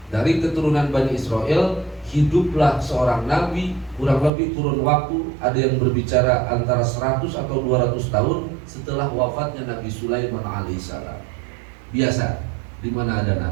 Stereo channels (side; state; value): left; drops out; at 4.3 s